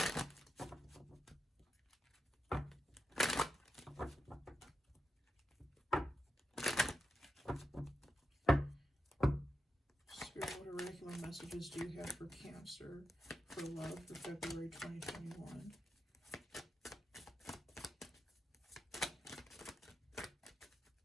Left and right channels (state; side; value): normal; both; correlation 0.87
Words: Spirit, what oracular messages do you have for Cancer for love for February 2021?